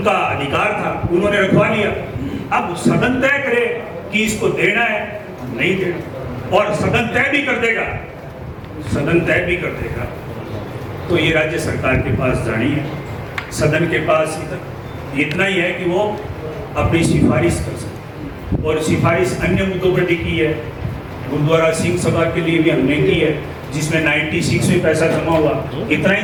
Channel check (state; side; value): identical; both; correlation 1.00